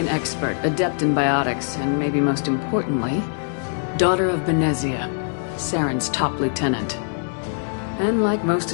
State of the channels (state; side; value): silent; right; digital silence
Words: expert, adept in biotics, and maybe most importantly, daughter of Benezia, Saren's top lieutenant. And like most